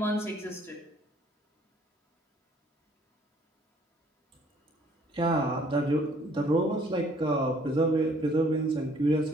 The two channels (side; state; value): both; normal; correlation 0.60